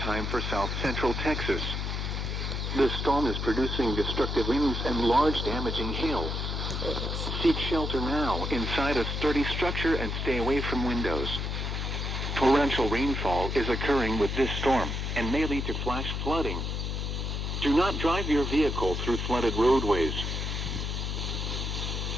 for South Central Texas. The storm is producing destructive winds and large damaging hail. Seek shelter now inside a sturdy structure and stay away from windows. Torrential rainfall is occurring with this storm and may lead to flash flooding. Do not drive your vehicle through flooded roadways.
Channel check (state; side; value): noise; left; hum, 2 dB below the sound